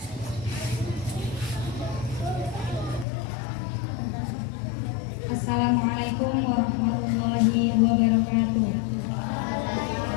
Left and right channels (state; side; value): drops out; right; at 3.1 s